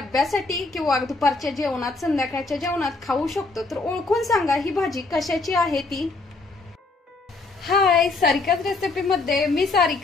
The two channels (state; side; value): quieter; right; 3.5 dB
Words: किंवा दुपारच्या जेवणात संध्याकाळच्या जेवणात खाऊ शकतो। तर ओळखून सांगा ही भाजी कशाची आहे ती। हाय, सारिकाच रेसिपी मध्ये मी